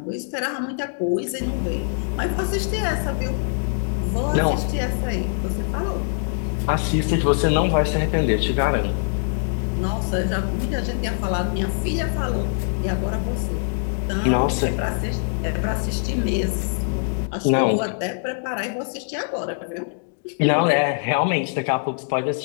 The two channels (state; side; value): silent; right; 63 dB below the other